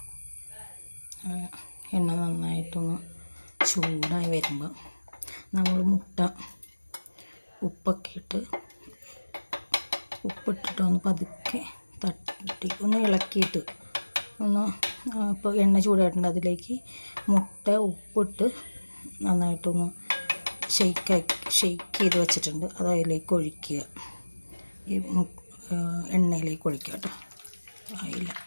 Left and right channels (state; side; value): inverted; both; correlation -1.00